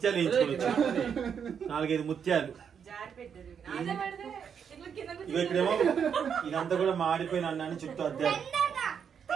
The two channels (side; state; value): left; quieter; 7.4 dB